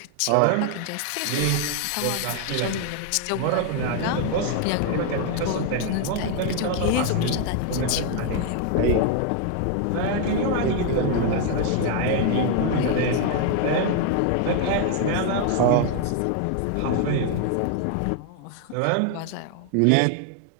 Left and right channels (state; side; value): different; both; correlation 0.00